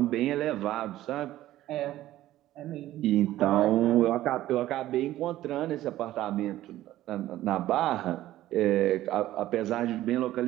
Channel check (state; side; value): quieter; left; 14.5 dB